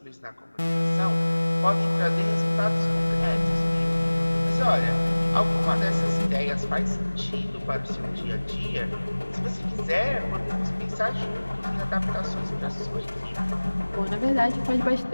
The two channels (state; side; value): inverted; both; correlation -1.00